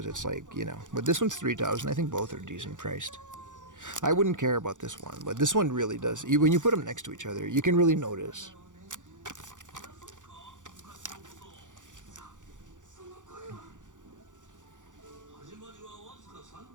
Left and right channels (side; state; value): left; late; 0.87 ms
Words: it's like, you know. But this one's 3,000. I think both are decent priced. I wouldn't care about this one, but this one really does. When you put them next to each other, you can really notice.